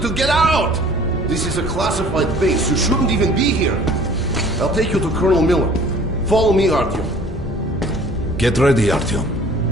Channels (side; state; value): both; normal; correlation 0.51